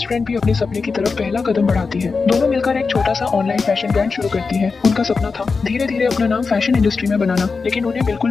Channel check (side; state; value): right; quieter; 4.6 dB